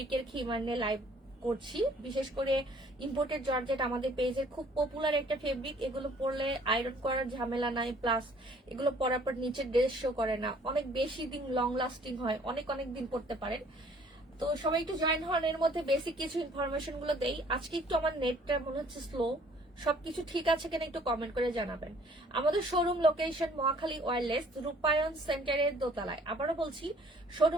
খিমার নিয়ে লাইভ করছি। বিশেষ করে ইম্পোর্টেড জর্জেট আমাদের পেজের খুব পপুলার একটা ফেব্রিক। এগুলো পরলে আয়রন করার ঝামেলা নাই, প্লাস এগুলো পরার পর নিচে ড্রেস শো করে না, অনেক বেশি দিন লং লাস্টিং হয়, অনেক অনেক দিন পরতে পারেন। তো সবাই একটু জয়েন হন, এর মধ্যে বেসিক কিছু ইনফরমেশন গুলো দেই। আজকে একটু আমার নেটটা মনে হচ্ছে স্লো, সবকিছু ঠিক আছে কিনা একটু কমেন্ট করে জানাবেন। আমাদের শোরুম লোকেশন মহাখালী ওয়্যারলেস রূপায়ণ সেন্টারের দোতলায়। আবারও বলছি,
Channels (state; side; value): normal; both; correlation 0.57